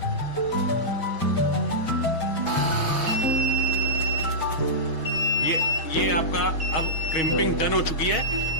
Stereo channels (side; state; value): right; late; 6.3 ms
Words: ये आपका अब क्रिम्पिंग डन हो चुकी है,